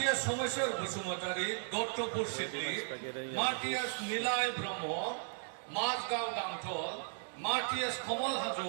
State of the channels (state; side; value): silent; left; 54 dB below the other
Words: সোমেশ্বর বসুমতারি দত্তপুর সিদ্ধি মার্টিয়াস নীলায় ব্রহ্ম মাঝগাঁও গাংথল মার্টিয়াস কমল